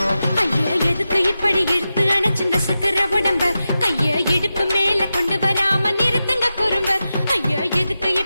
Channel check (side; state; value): both; inverted; correlation -0.92